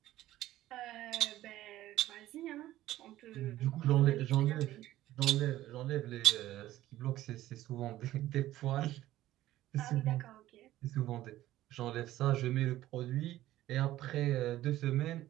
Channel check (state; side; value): quieter; left; 14.7 dB